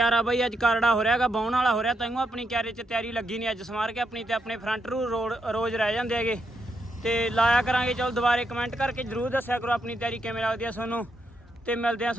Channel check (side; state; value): both; normal; correlation 0.81